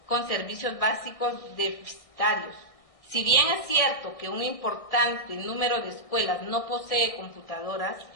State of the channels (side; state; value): right; late; 1.6 ms